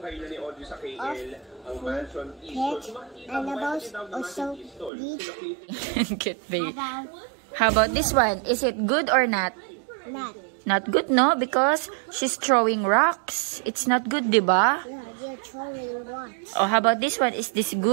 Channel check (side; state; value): left; drops out; at 4.9 s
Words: of food. Pet animals also need Get babe. How about this one? Is it good or not? not. Not good, no? Because she's throwing rocks. It's not good, diba? Yeah, they're throwing rocks. Oh, how about this one? Is this